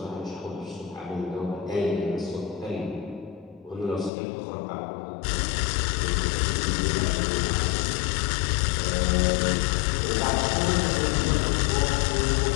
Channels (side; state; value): right; drops out; at 4.1 s